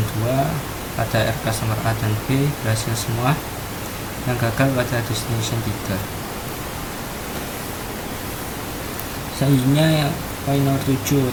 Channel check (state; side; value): identical; both; correlation 1.00